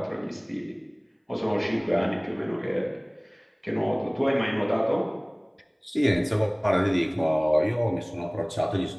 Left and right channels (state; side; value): identical; both; correlation 1.00